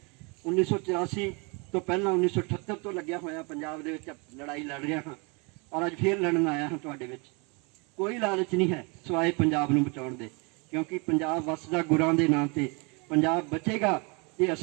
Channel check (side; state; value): left; quieter; 31.0 dB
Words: 1984 ਤੋਂ ਪਹਿਲਾਂ 1978 ਤੋਂ ਲੱਗਿਆ ਹੋਇਆ ਪੰਜਾਬ ਦੇ ਵਿੱਚ ਲੜਾਈ ਲੜ ਰਿਹਾ ਹਾਂ, ਔਰ ਅੱਜ ਫੇਰ ਲੜਨ ਆਇਆ ਹਾਂ ਤੁਹਾਡੇ ਵਿੱਚ। ਕੋਈ ਲਾਲਚ ਨਹੀਂ ਹੈ ਸਿਵਾਏ ਪੰਜਾਬ ਨੂੰ ਬਚਾਉਣ ਦੇ, ਕਿਉਂਕਿ ਪੰਜਾਬ ਵਸਦਾ ਗੁਰਾਂ ਦੇ ਨਾਂ ਤੇ। ਪੰਜਾਬ ਬਚੇਗਾ ਤੇ